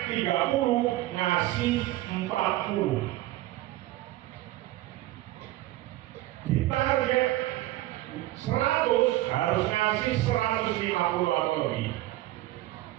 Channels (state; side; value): quieter; left; 16.4 dB